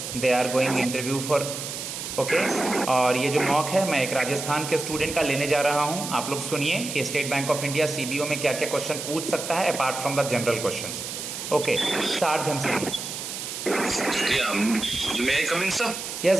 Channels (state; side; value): noise; right; hiss, 7 dB below the sound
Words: They are going interview for okay और ये जो mock है मैं एक राजस्थान के student का लेने जा रहा हूँ। आप लोग सुनिए कि state bank of India CBO में क्या क्या क्वेश्चन पूछ सकता है apart from the general questions. Okay start Ghanshyam.